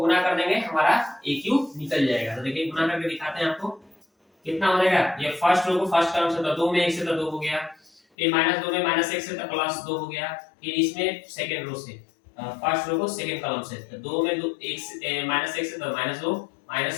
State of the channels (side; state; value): right; drops out; at 8.0 s